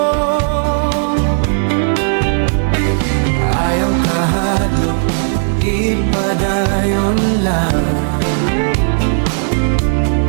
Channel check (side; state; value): left; silent; 57 dB below the other